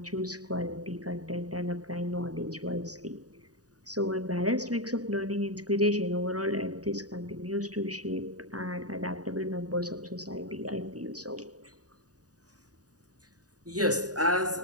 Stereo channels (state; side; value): late; left; 0.68 ms